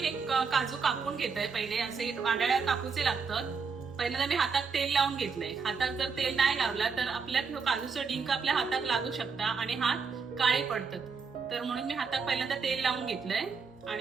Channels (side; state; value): left; quieter; 5.3 dB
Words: काजू कापून घेतोय। पहिले असे वाडाळ्या कापूचे लागतात। पहिल्यांदा मी हातात तेल लावून घेतलंय। हातात जर तेल नाही लावला तर आपल्या काजूचा डिंक आपल्या हातात लागू शकता आणि हात काळे पडतात। तर म्हणून मी हातात पहिल्यांदा तेल लावून घेतलंय